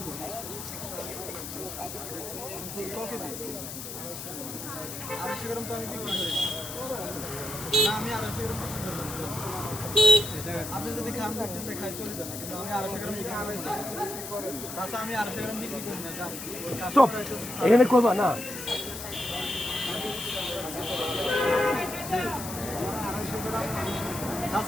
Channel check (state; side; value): noise; left; hiss, 8 dB below the sound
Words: আপনি যদি খান খাই চলে যান কিন্তু আমি 250 গ্রাম চাচা আমি 250 গ্রাম বিক্রি করি না জান স্টপ এখানে করবা না